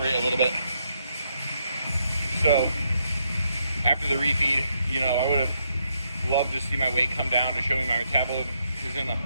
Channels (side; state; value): both; inverted; correlation -0.77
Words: a little bit. So after the refeed, I would have loved to see my weight come down to show me my metabolism is in a